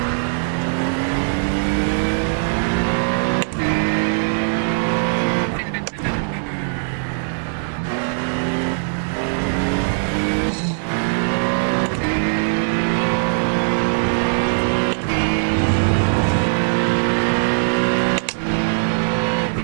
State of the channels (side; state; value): left; silent; digital silence